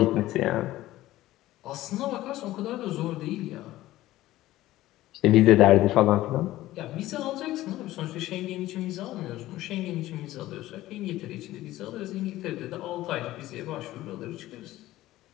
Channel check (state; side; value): quieter; right; 15.9 dB